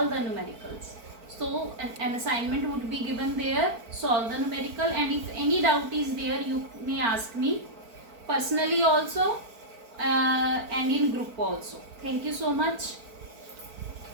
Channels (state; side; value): late; left; 4.4 ms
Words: the numericals. So an assignment would be given there, solve the numerical, and if any doubt is there you may ask me personally also and in group also. Thank you so much.